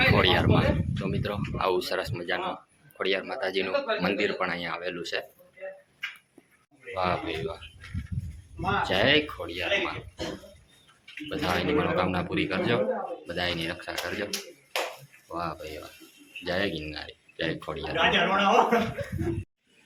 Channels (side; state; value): both; identical; correlation 1.00